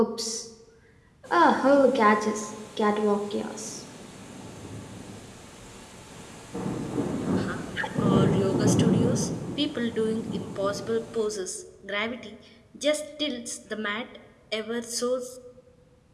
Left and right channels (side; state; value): both; identical; correlation 1.00